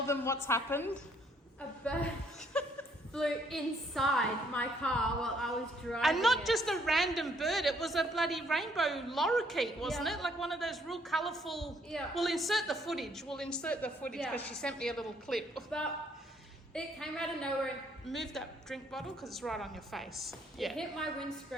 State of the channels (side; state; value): both; normal; correlation 0.67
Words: them what's happened? A bird flew inside my car while I was driving. And not just a random bird, it was a bloody rainbow lorikeet, wasn't it? Like one of those real colourful... Yeah. We'll insert the footage because she sent me a little clip. But it came out of nowhere. Move that drink bottle because it's right on your face. Yeah. It hit my